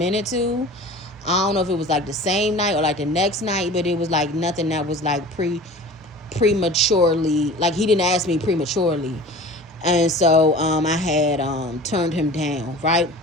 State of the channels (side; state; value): both; normal; correlation 0.40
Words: too. I don't know if it was like the same night or like the next night, but it was like nothing that was like prematurely, like he didn't ask me prematurely. And so I had turned him down, right?